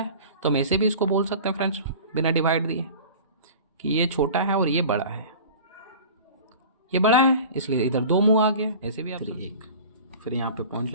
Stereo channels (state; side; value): inverted; both; correlation -0.39